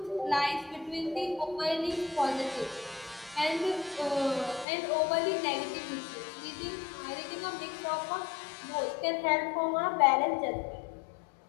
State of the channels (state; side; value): drops out; right; at 4.7 s